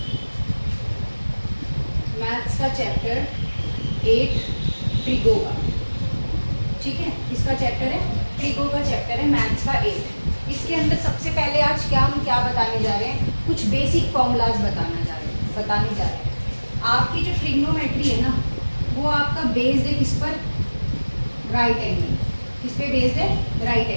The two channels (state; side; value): inverted; both; correlation -1.00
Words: मैथ्स का चैप्टर 8 ट्रिगो का, ठीक है, इसका चैप्टर है ट्रिगो का चैप्टर है मैथ्स का 8। इसके अंदर सबसे पहले आज हम क्या बताने जा रहे हैं, कुछ बेसिक फॉर्मूलाज बताने जा रहे हैं। आपकी जो ट्रिग्नोमेट्री है ना, वो आपका बेस्ड है किस पर, राइट एंगल। किस पे बेस्ड है, राइट